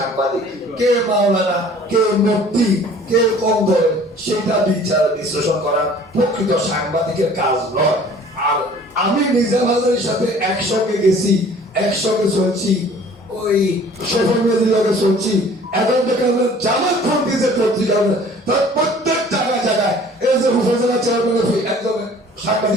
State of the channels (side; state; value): both; normal; correlation 0.50